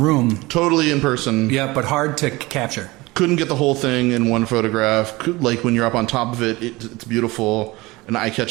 Totally in person. Yeah, but hard to capture. Couldn't get the whole thing in one photograph. Like when you're up on top of it, it's beautiful and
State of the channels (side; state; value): left; quieter; 21.5 dB